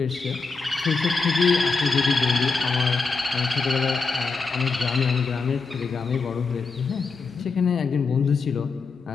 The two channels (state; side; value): quieter; right; 4.4 dB